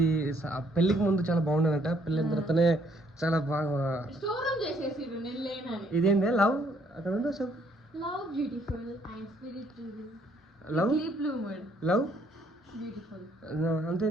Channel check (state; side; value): normal; both; correlation 0.67